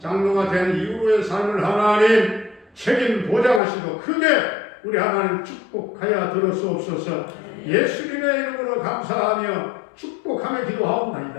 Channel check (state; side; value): drops out; right; at 3.6 s